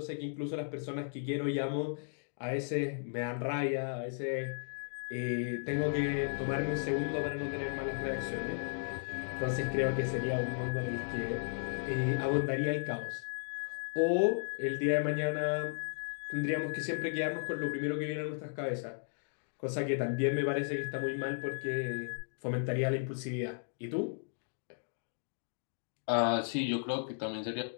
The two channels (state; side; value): silent; right; digital silence